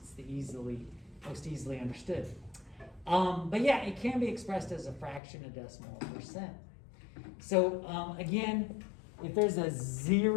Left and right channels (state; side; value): drops out; right; at 5.2 s